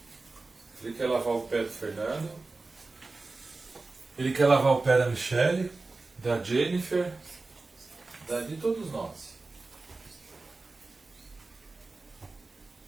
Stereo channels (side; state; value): left; quieter; 3.6 dB